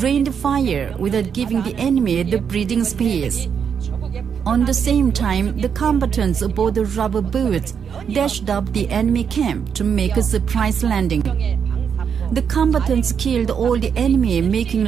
rained fire without giving the enemy the breathing space. On the same time, the combatants aboard the rubber boats dashed up the enemy camp to make a surprise landing. The combatants killed all the enemy, making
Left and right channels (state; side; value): quieter; left; 7.1 dB